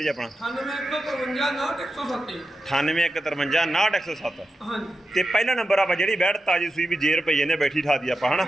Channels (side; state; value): both; normal; correlation 0.90